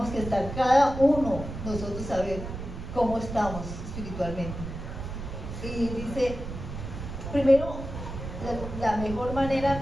que estar cada uno, nosotros saber cómo estamos espiritualmente. Y dice, primero, la mejor manera,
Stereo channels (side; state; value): right; noise; rumble, 8 dB below the sound